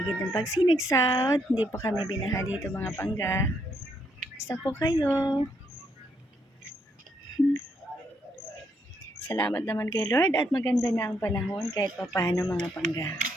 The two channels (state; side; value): normal; both; correlation 0.75